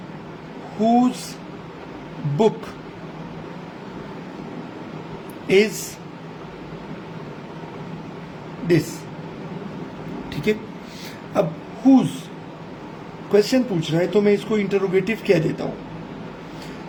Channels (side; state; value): both; identical; correlation 1.00